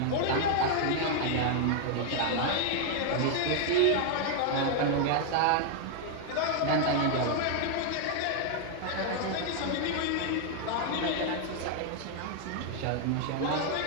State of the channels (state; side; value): different; both; correlation 0.00